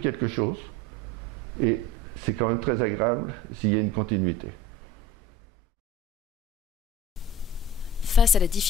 chose et c'est quand même très agréable s'il y a une continuité. Face à la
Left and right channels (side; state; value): both; normal; correlation 0.39